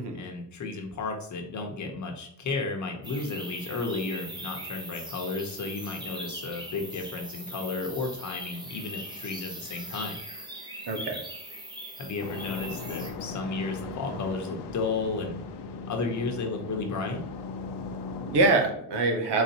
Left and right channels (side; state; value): both; normal; correlation 0.04